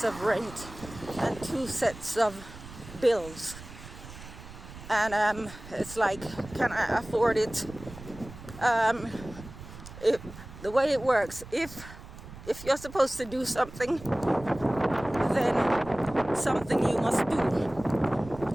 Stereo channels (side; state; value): right; noise; rumble, 15 dB below the sound